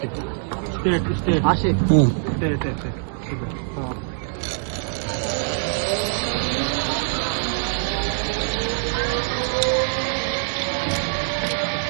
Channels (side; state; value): left; silent; 63 dB below the other